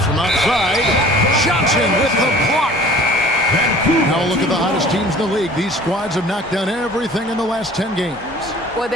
from outside. Johnson with the block. Now look at the hottest teams in the league. These squads have knocked down everything in the last 10 games. Boy,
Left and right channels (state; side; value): normal; both; correlation 0.47